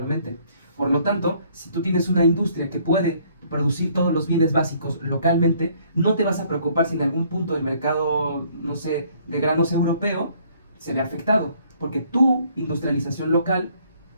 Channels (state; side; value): inverted; both; correlation -0.63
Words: Por lo tanto, si tú tienes una industria que puede producir todos los bienes básicos localmente, no te vas a preocupar si en algún punto el mercado, no sé, de granos europeo se ve afectado, porque tu industrialización local